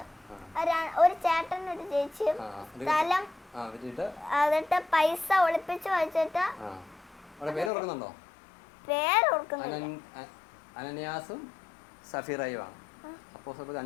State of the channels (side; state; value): right; drops out; at 7.7 s